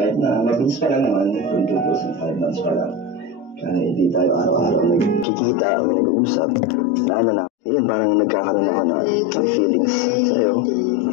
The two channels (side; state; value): right; drops out; at 5.2 s